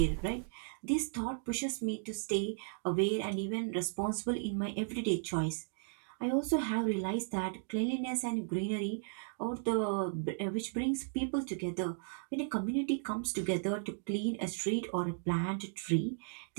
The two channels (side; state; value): left; silent; digital silence